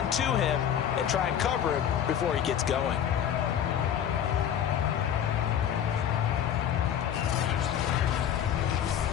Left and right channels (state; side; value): quieter; right; 9.5 dB